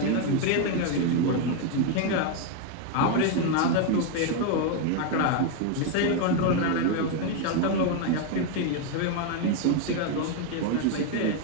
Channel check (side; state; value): both; different; correlation 0.01